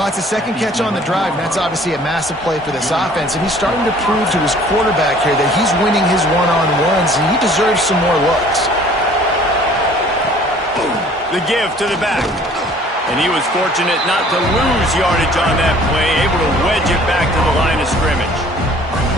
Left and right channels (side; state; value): both; normal; correlation 0.53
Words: it's a second catch on the drive, and that's obviously a massive play for this offense. And he's starting to prove to his quarterback here that he's winning his one-on-ones, and he deserves some more looks. The give to the back. And he was fortunate not to lose yardage on that play, able to wedge it back to the line of scrimmage.